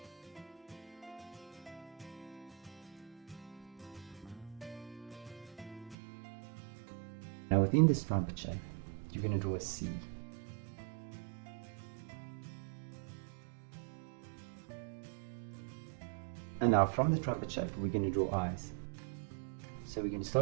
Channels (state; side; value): drops out; left; at 6.0 s